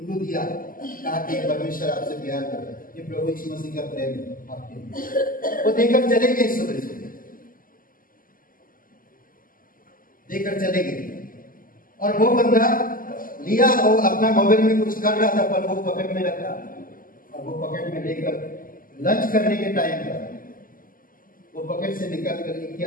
दिया, कहा कि परमेश्वर आपसे प्यार करता है, ये प्रभु यीशु मसीह का प्रेम है आपके लिए। वो देकर चले गए, सुबह सुबह देकर चले गए, और वो बंदा लिया, वो अपना मोबाइल में कुछ कर रहा था, पर वो पॉकेट में रखा, और वो पॉकेट में लेकर लंच करने के टाइम पर वो पॉकेट से निकाल कर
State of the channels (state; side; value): late; right; 0.41 ms